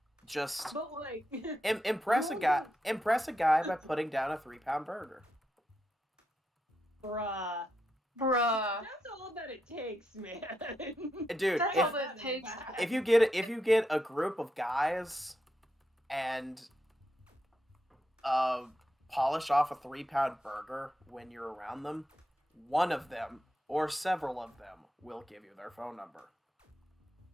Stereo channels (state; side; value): normal; both; correlation 0.84